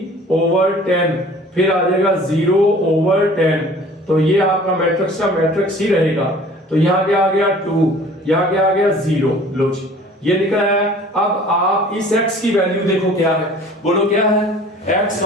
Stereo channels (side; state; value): both; normal; correlation 0.48